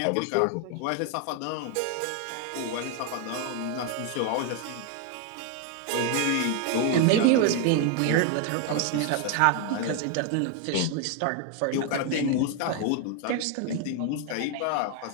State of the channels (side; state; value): both; different; correlation 0.01